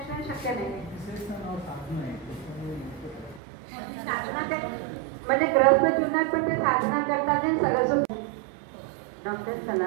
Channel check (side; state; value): left; drops out; at 3.4 s